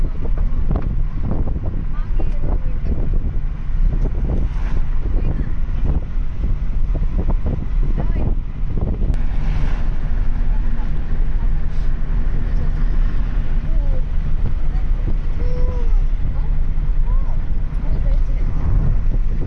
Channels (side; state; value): both; identical; correlation 1.00